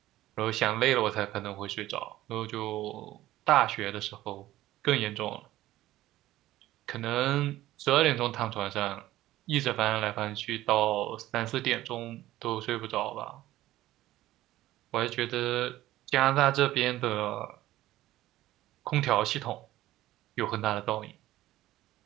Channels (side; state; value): left; quieter; 15.5 dB